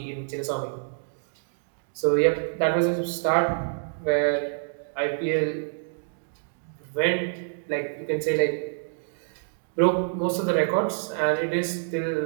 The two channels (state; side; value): silent; left; digital silence